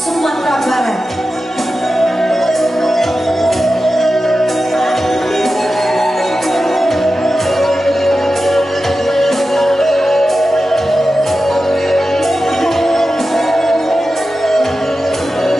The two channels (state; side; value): normal; both; correlation 0.92